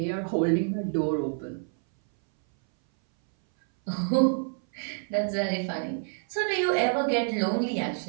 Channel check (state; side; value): silent; left; 59 dB below the other